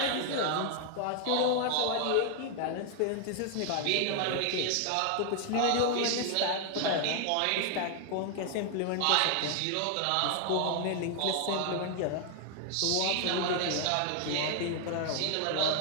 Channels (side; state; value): both; different; correlation 0.00